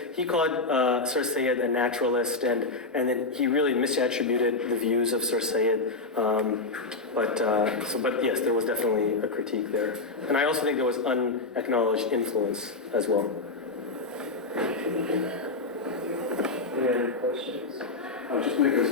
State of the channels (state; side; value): quieter; right; 3.5 dB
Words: he called Sir Sayyid a naturalist, and then he really misattributed the views of Sir Sayyid. But yes, there was definitely a critique there. And I also think there was unacknowledged influence as well. Any other questions? I'll just make a